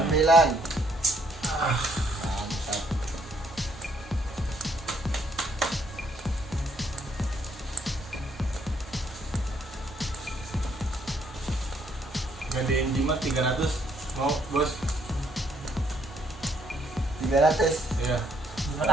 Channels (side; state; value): both; normal; correlation 0.69